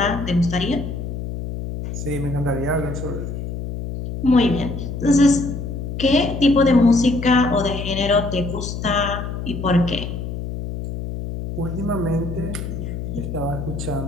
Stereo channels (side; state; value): left; noise; hum, 6 dB below the sound